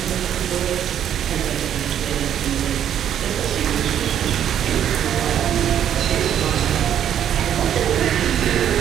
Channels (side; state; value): left; quieter; 10.0 dB